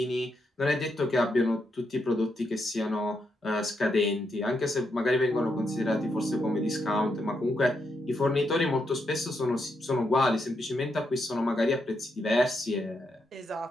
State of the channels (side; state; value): both; normal; correlation 0.81